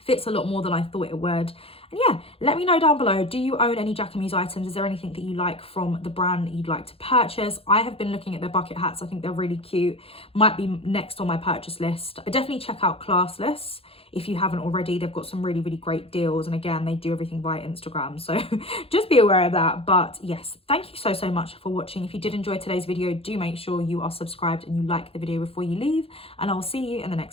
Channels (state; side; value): late; right; 0.27 ms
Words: a lot more than I thought it would. And yeah, let me know down below, do you own any Jacquemus items? Is there anything that you like from the brand that you'd like to purchase? I have been looking at their bucket hats. I think they're really cute. Might be next on my purchase list. But definitely check out Classless if you haven't already. They've got some really, really great deals. And again, they do everything via Instagram. So just be aware of that. But yes, thank you so much for watching. If you did enjoy today's video, do make sure you are subscribed and you like the video before you leave. And I'll see you in the